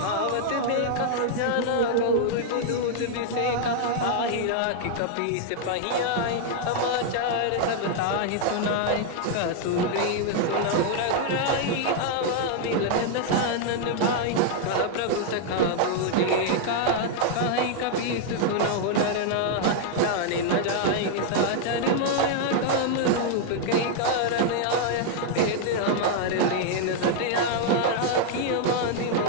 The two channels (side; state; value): both; different; correlation 0.00